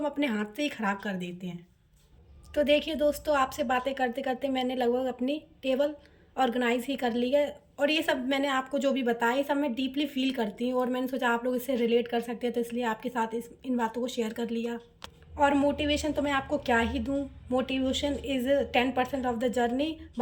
अपने हाथ से ही ख़राब कर देते हैं। तो देखिए दोस्तों, आपसे बातें करते करते मैंने लगभग अपनी टेबल ऑर्गेनाइज ही कर ली है। और ये सब मैंने आपको जो भी बताया, ये सब मैं डीपली फील करती हूँ, और मैंने सोचा आप लोग इससे रिलेट कर सकते हैं, तो इसलिए आपके साथ इन बातों को शेयर कर लिया। और मोटिवेशन तो मैं आपको क्या ही दूँ। Motivation is 10% of the journey.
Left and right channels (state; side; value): identical; both; correlation 1.00